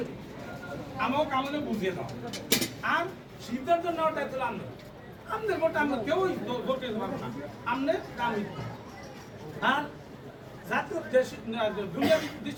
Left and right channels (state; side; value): identical; both; correlation 1.00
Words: আমাকে কামনে বুঝিয়ে দাও। আর সিদ্ধান্ত নেওয়ার দায়িত্ব আনবে, আপনার ভোটটা আমরা কেউই ভোট দিতে পারবো না, আপনার কাম। আর জাতীয় দুনিয়াবী